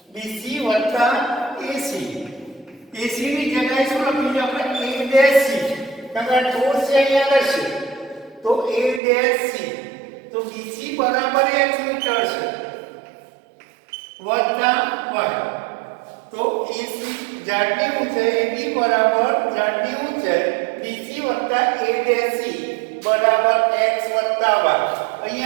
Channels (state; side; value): drops out; left; at 9.0 s